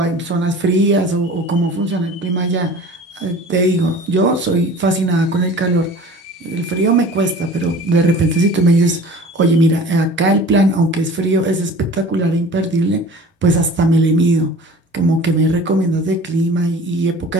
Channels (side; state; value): both; normal; correlation 0.42